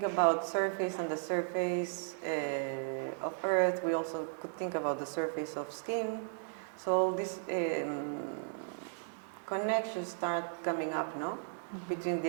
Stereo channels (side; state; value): left; silent; digital silence